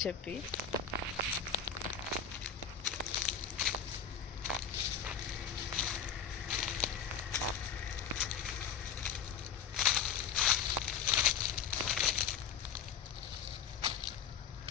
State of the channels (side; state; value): right; quieter; 7.5 dB